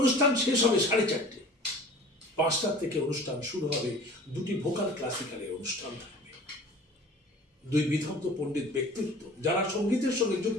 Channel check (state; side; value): normal; both; correlation 0.44